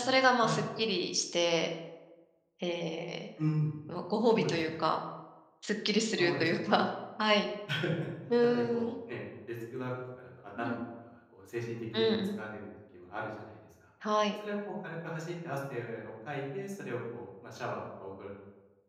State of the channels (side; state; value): both; identical; correlation 1.00